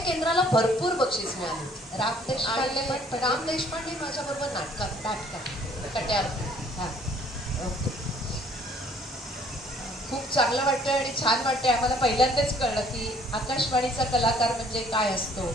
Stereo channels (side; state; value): both; normal; correlation 0.59